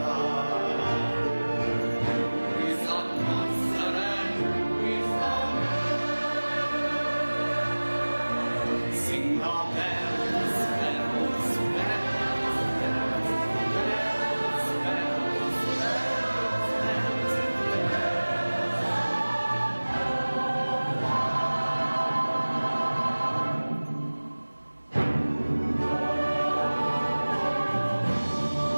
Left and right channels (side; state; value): both; inverted; correlation -1.00